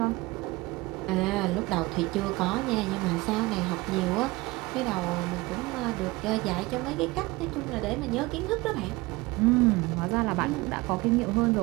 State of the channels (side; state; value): left; quieter; 21.8 dB